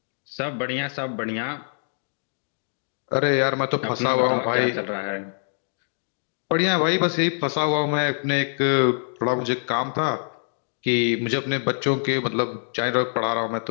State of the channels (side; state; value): right; silent; digital silence